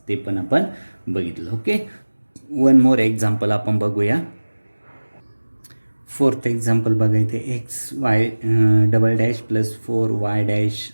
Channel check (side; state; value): both; inverted; correlation -1.00